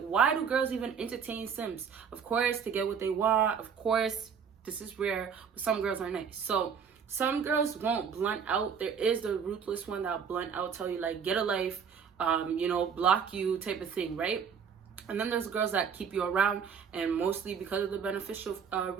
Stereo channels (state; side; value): quieter; left; 6.9 dB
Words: do girls even entertain simps? Of course, to get what they want. Of course, this is rare, but some girls are nice. So some girls won't blunt out. There is the ruthless one that'll blunt out, tell you like, get a life, you know, block you type of thing, right? And then there's girls that keep you around, and mostly because of the beneficial